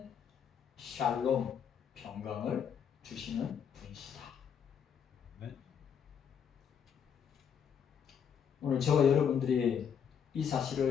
샬롬, 평강을 주시는 분이시다. 네. 오늘 저와 여러분들이 이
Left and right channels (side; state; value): right; quieter; 7.7 dB